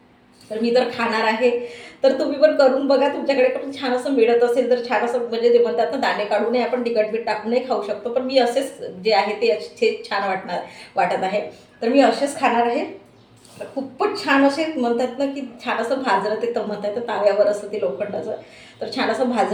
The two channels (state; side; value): identical; both; correlation 1.00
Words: तर मी तर खाणार आहे. तर तुम्ही पण करून बघा. तुमच्याकडे पण छान असं मिळत असेल तर छान असं म्हणजे ते म्हणतात ना दाणे काढूनही आपण तिखट मीठ टाकूनही खाऊ शकतो. पण मी असेच जे आहे ते असेच छान वाटत आहे. तर मी असेच खाणार आहे. खूपच छान असे म्हणतात ना की छान असं भाजलं ते तर म्हणतात तर ताव्यावर असं ते लोखंडाचं. तर छान असं